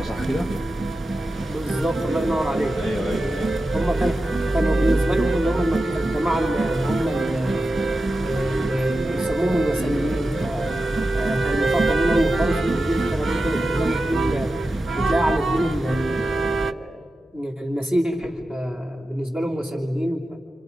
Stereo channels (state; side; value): normal; both; correlation 0.92